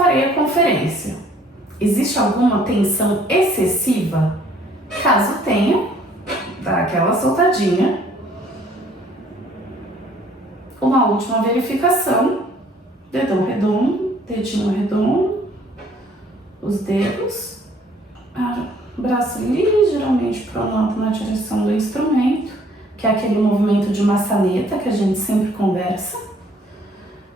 a conferência. Existe alguma tensão excessiva? Caso tenha, dá aquela soltadinha. Uma última verificação. Dedão redondo, dedinho redondo, os dedos, braço ligeiramente pronto na direção do instrumento, que é aquele movimento de maçaneta que a gente sempre conversa.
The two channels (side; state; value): both; normal; correlation 0.59